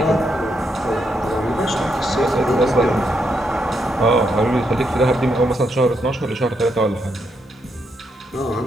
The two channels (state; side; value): normal; both; correlation 0.79